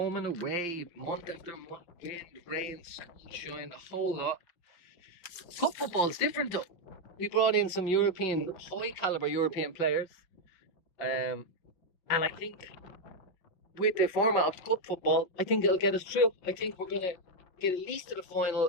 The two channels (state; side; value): late; right; 5.6 ms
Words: and away, month after month, wind, rain, sunshine, the whole lot. Cup football is different though. We brought in some high caliber European players. And I think with the format of cup football, I think it'll get us through. I think we're going to get at least to the